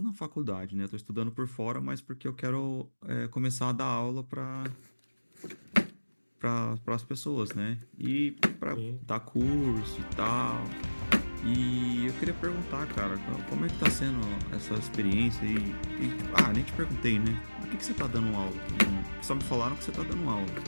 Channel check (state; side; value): inverted; both; correlation -1.00